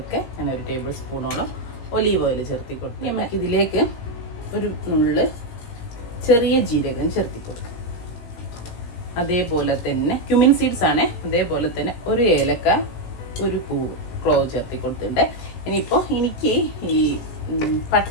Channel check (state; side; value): late; right; 17 ms